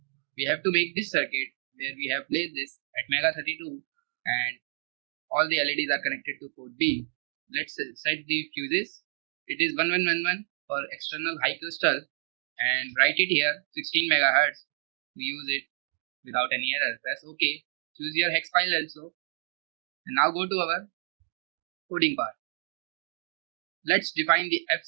We have to make this circuit where we have placed this Atmega32 and all the LEDs are connected to port B. Let's set the fuses. It is 1111 for external high crystal and write it here 16 megahertz. We use it without any error. Press OK. Choose your hex file also. And now go to our coding part. Let's define the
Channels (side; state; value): left; silent; digital silence